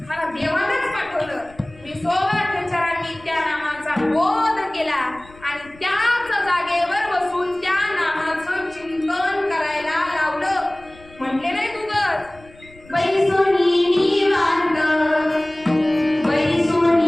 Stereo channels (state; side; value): noise; left; rumble, 24 dB below the sound